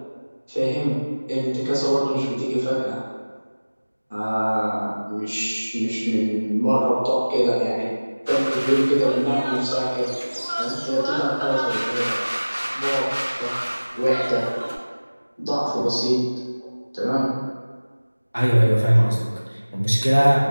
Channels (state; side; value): inverted; both; correlation -1.00